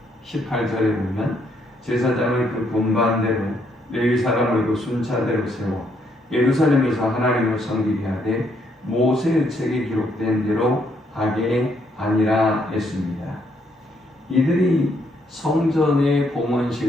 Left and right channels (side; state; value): both; normal; correlation 0.73